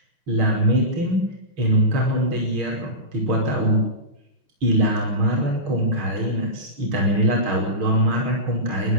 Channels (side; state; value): left; late; 6.3 ms